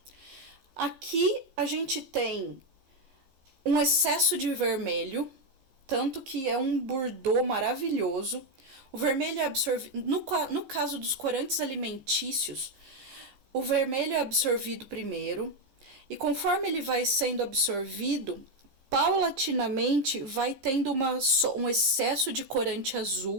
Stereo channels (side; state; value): left; late; 15 ms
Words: Aqui a gente tem um excesso de vermelho, tanto que é um bordô maravilhoso. O vermelho é absorvido, no caso dos corantes alimentícios, o vermelho é absorvido primeiro, e conforme ele vai sendo absorvido, paulatinamente vai tendo um excesso de corante